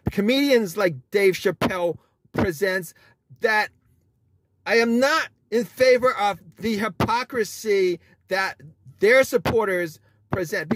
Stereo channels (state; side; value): identical; both; correlation 1.00